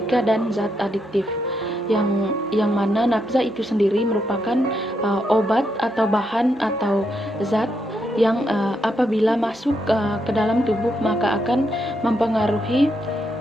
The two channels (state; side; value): normal; both; correlation 0.80